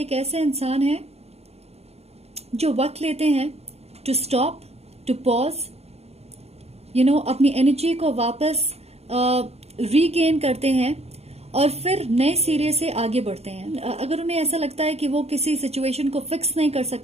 एक ऐसे इंसान है जो वक्त लेते हैं to stop, to pause, you know, अपनी एनर्जी को वापस रीगेन करते हैं और फिर नए सिरे से आगे बढ़ते हैं। अगर उन्हें ऐसा लगता है कि वो किसी सिचुएशन को फिक्स नहीं कर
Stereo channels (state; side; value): late; left; 0.30 ms